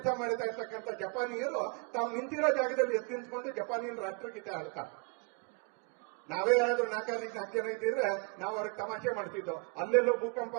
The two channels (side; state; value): left; quieter; 34.9 dB